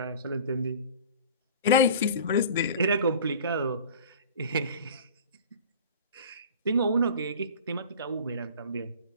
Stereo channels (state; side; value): inverted; both; correlation -0.40